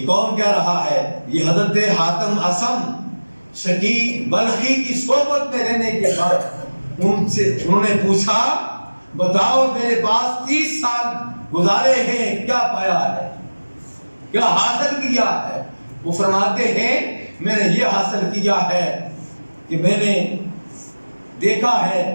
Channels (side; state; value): both; inverted; correlation -1.00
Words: کون کہہ رہا ہے؟ یہ حضرت حاتم اصم شقیق بلخی کی صحبت میں رہنے کے بعد انہوں نے پوچھا بتاؤ میرے پاس 30 سال گزارے ہیں، کیا پایا ہے، کیا حاصل کیا ہے؟ وہ فرماتے ہیں میں نے یہ حاصل کیا ہے کہ میں نے دیکھا ہے